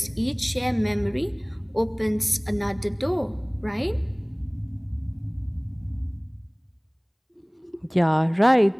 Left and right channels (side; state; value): both; identical; correlation 1.00